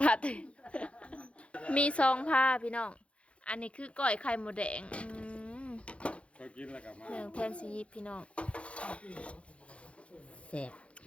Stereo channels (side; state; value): right; late; 0.061 ms